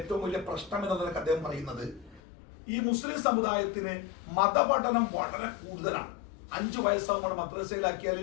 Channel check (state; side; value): drops out; right; at 2.2 s